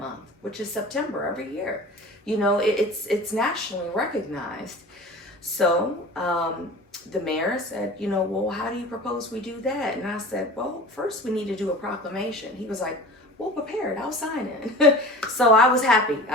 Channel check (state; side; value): normal; both; correlation 0.39